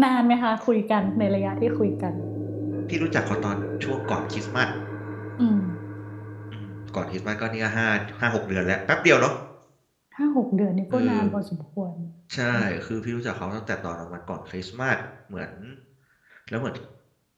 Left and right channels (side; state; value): both; identical; correlation 1.00